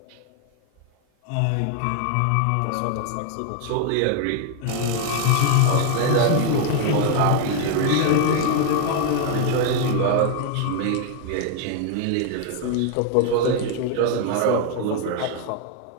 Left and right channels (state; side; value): different; both; correlation 0.00